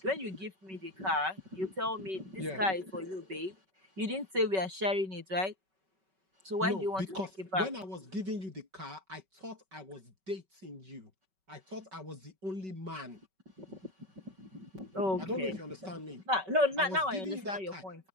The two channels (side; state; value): left; late; 5.3 ms